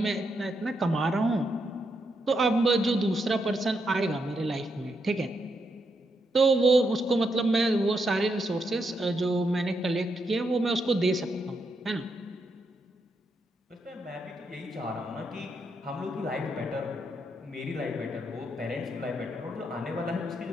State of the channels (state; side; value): normal; both; correlation 0.80